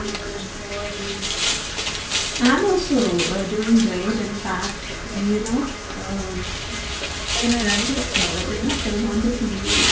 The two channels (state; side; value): identical; both; correlation 1.00